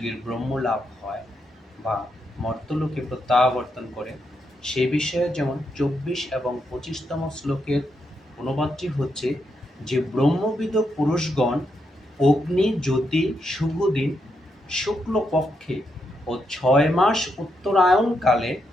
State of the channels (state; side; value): normal; both; correlation 0.81